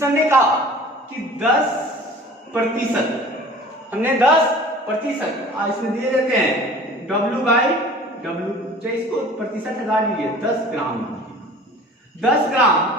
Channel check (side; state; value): both; normal; correlation 0.45